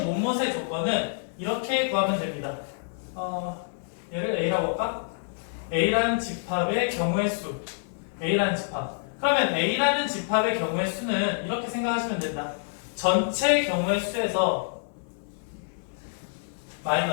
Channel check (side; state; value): right; silent; 58 dB below the other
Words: 뭐뭐의 조건은 이렇게 구하면 됩니다. 얘를 A라고 할까? A라는 집합의 경우의 수. A라는 집합. 그러면 A라는 집합의 경우의 수는 이렇게 생각하시면 된다. 전체 경우의 수에서